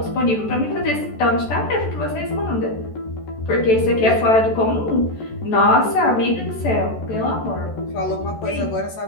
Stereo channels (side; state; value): right; late; 14 ms